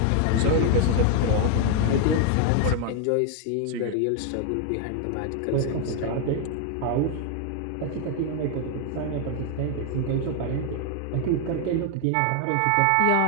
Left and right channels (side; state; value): both; different; correlation 0.00